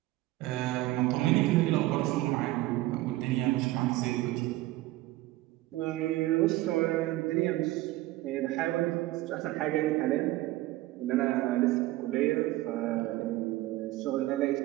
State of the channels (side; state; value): left; quieter; 17.5 dB